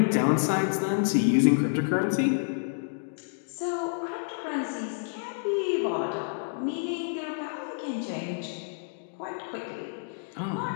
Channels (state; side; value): silent; right; digital silence